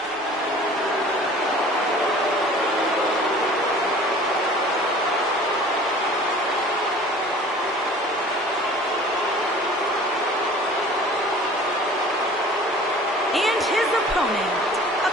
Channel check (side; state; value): both; normal; correlation 0.46